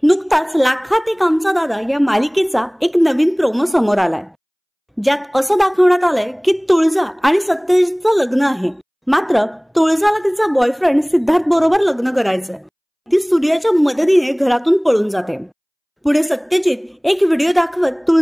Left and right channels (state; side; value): identical; both; correlation 1.00